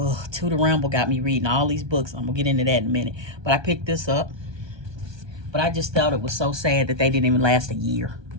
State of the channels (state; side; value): late; left; 1.2 ms